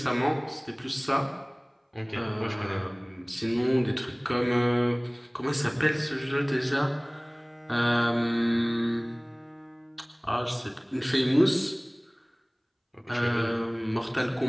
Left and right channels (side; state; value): both; identical; correlation 1.00